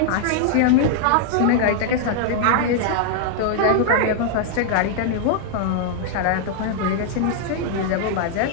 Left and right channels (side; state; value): both; different; correlation -0.01